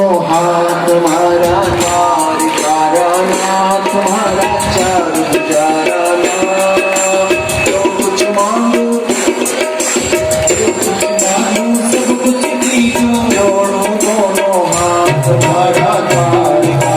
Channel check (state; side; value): identical; both; correlation 1.00